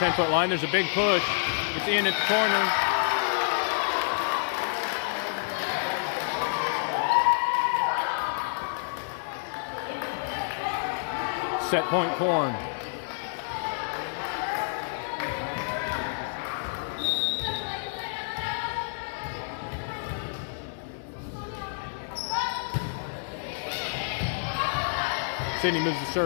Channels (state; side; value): silent; right; digital silence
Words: line. There's a big push. It's in at the corner. Set point Corn. Sydney moves the